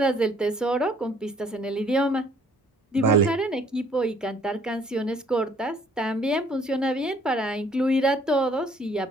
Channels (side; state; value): both; normal; correlation 0.60